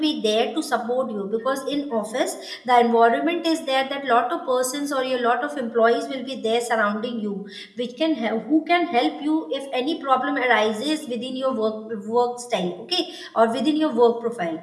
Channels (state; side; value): identical; both; correlation 1.00